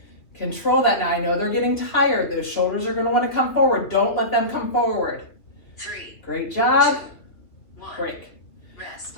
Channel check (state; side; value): late; right; 3.0 ms